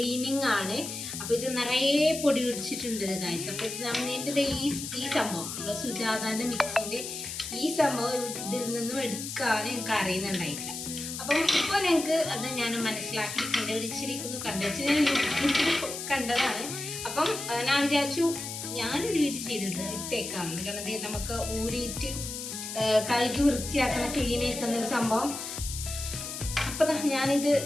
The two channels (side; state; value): left; noise; hiss, 7 dB below the sound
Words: ആണ്. അപ്പോൾ ഇത് നിറയെ പൊടി പിടിച്ചിട്ടുണ്ട് ഗൈസ്. അപ്പോൾ ഇത് നമ്മുടെ ഈ സംഭവം നമ്മുടെ സുജാതാന്റെ മിക്സിന്റെ ഈ സംഭവം ഇതിൽ നിന്നും എടുക്കാൻ എനിക്ക് അറിയുന്നുണ്ടായിട്ടില്ല. അപ്പം ഇപ്പോൾ ഞങ്ങൾക്ക് അത് ഞാൻ മനസ്സിലാക്കി കണ്ടുപിടിച്ചിരിക്കുന്നു. ഞാൻ യൂട്യൂബിൽ കണ്ടതാണ്. അപ്പം ഞാൻ വിചാരിച്ചു ഞാനൊരു വീഡിയോ ചെയ്തിട്ട് ഇട്ടേക്കാം. കാരണം നമുക്ക് ഊരിയിട്ട് കഴുകി വൃത്തിയാക്കുന്ന ക്ലീൻ ആക്കുന്ന ഒരു സംഭവം. അപ്പൊ